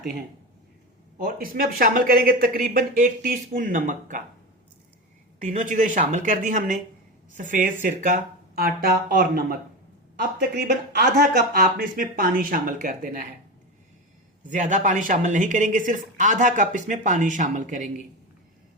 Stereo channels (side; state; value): both; normal; correlation 0.21